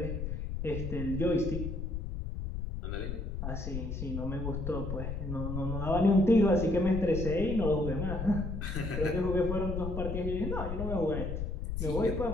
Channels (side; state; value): left; noise; rumble, 4 dB below the sound